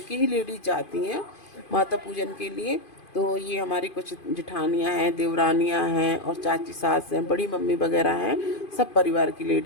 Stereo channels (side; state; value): right; late; 2.5 ms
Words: ही लेडीज जाती हैं माता पूजन के लिए। तो ये हमारी कुछ जेठानियाँ हैं, देवरानियाँ हैं, और चाची सास हैं, बड़ी मम्मी वगैरह हैं। सब परिवार की